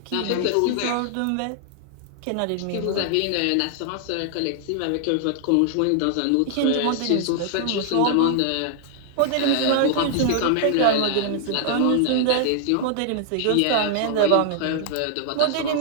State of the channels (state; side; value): different; both; correlation 0.00